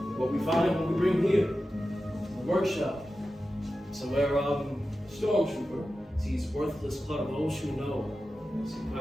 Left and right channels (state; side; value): normal; both; correlation 0.93